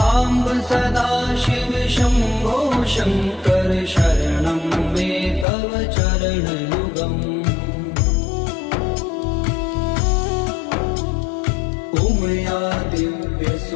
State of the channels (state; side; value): drops out; right; at 5.5 s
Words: सदा शिव शंभो शंकर शरणं मे तव चरण युगम् उमया दिव्य